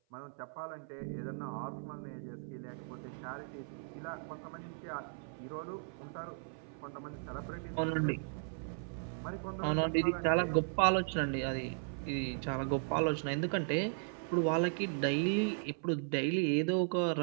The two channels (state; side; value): silent; left; 53 dB below the other